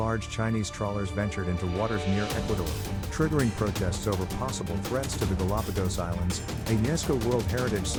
Chinese trawlers ventured into waters near Ecuador, triggering protests over possible threats to the Galapagos Islands, a UNESCO World Heritage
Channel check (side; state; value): both; identical; correlation 1.00